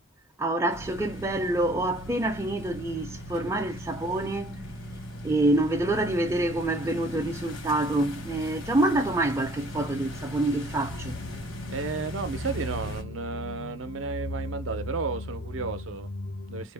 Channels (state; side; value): normal; both; correlation 0.54